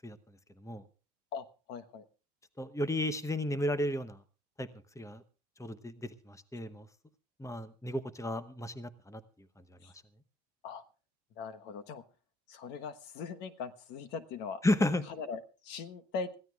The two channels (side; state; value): both; normal; correlation 0.68